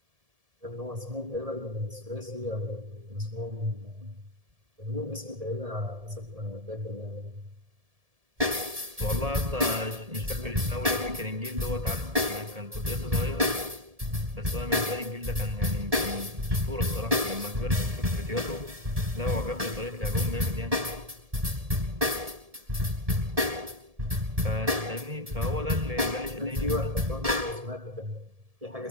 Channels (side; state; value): left; late; 1.7 ms